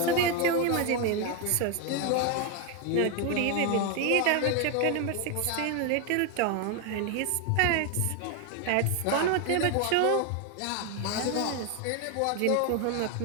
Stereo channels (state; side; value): different; both; correlation 0.01